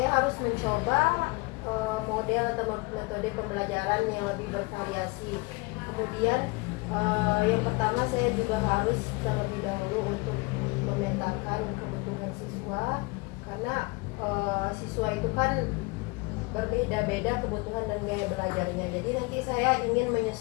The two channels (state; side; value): quieter; right; 26.4 dB